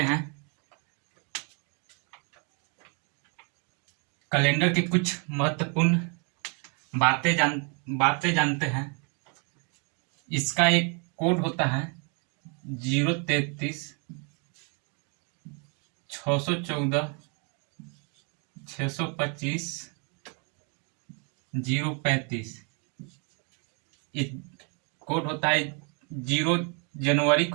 हैं। कैलेंडर के कुछ महत्वपूर्ण बातें जानते हैं। इसका एक कोड होता है 033 614 625 035। कोड होता है 0 जनवरी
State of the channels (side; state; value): left; quieter; 37.0 dB